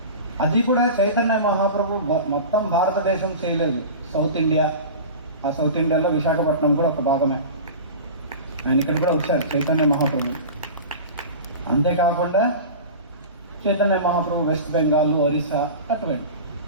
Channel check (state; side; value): inverted; both; correlation -0.33